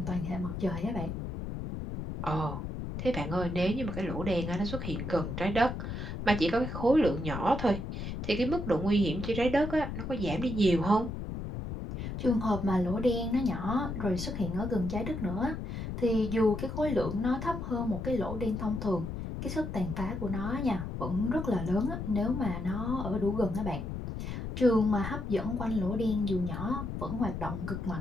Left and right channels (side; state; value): left; noise; rumble, 5 dB below the sound